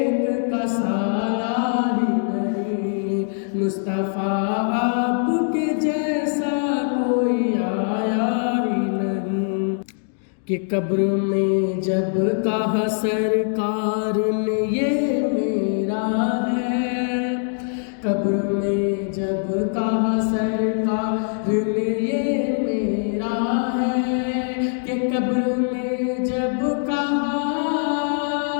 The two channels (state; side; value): silent; right; digital silence